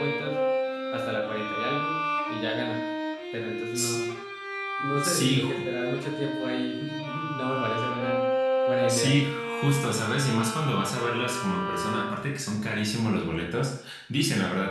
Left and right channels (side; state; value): both; identical; correlation 1.00